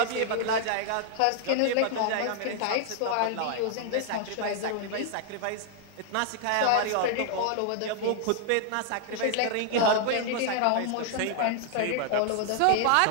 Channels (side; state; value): both; different; correlation 0.00